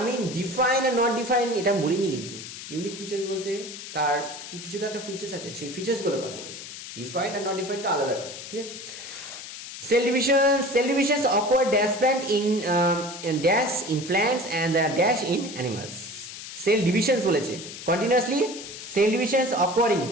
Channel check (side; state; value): left; noise; hiss, 11 dB below the sound